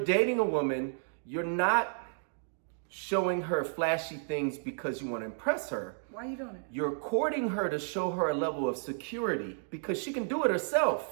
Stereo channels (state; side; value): silent; left; digital silence